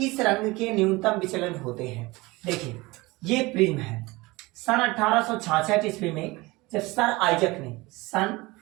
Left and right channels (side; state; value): left; quieter; 22.3 dB